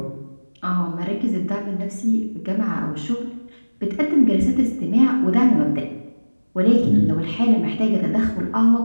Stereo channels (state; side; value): inverted; both; correlation -1.00